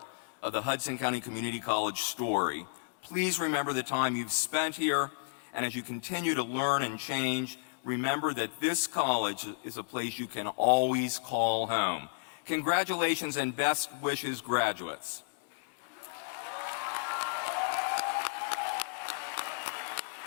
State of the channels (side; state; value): right; silent; digital silence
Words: of the Hudson County Community College story. Please remember the time you've spent here, and as you continue to learn and change, remember that this college is a place you can always call home. Congratulations and best wishes, graduates.